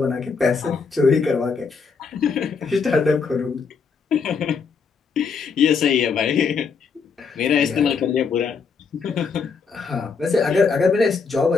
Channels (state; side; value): quieter; right; 5.3 dB